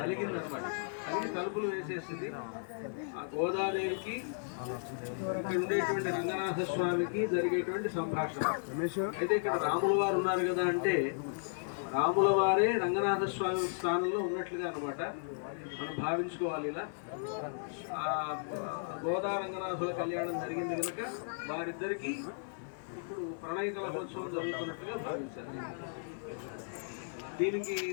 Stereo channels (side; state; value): right; silent; 54 dB below the other